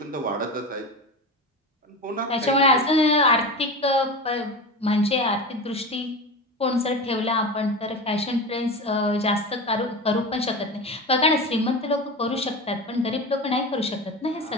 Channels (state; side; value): normal; both; correlation 0.26